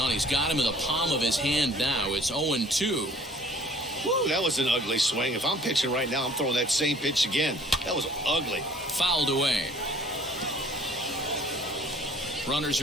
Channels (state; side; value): normal; both; correlation 0.54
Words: he's got him in the palm of his hand now. It's 0-2. Woo, that was an ugly swing. If I'm pitching right now, I'm throwing that same pitch again. That was ugly. Fouled away. Runners